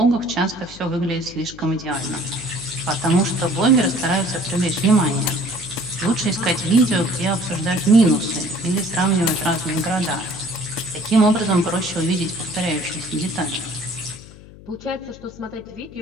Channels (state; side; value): noise; left; hum, 19 dB below the sound